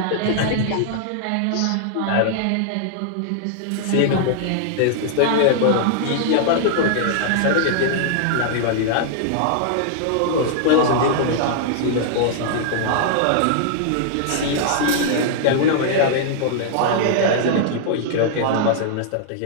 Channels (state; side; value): different; both; correlation -0.01